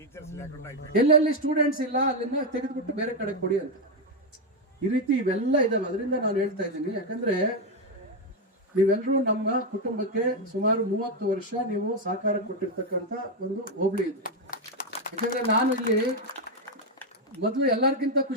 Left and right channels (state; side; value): normal; both; correlation 0.05